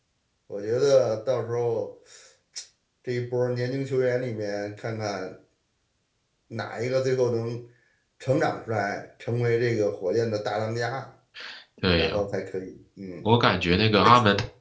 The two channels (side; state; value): both; identical; correlation 1.00